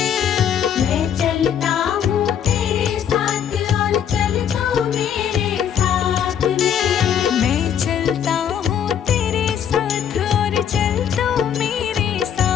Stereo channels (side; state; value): right; quieter; 8.9 dB